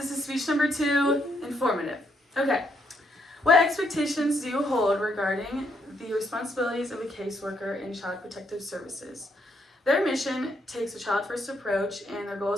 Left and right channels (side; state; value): both; normal; correlation 0.74